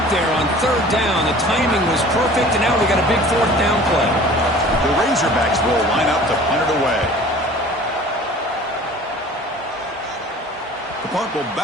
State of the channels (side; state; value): both; normal; correlation 0.46